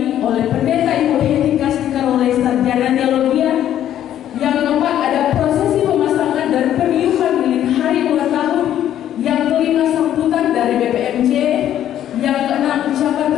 oleh pendeta Ibu Heti Kastika oleh sarjana teologi. Yang keempat ada prosesi pemasangan dan peniupan lilin hari ulang tahun. Yang kelima sambutan dari BPMJ. Yang keenam ucapan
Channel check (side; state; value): right; quieter; 11.2 dB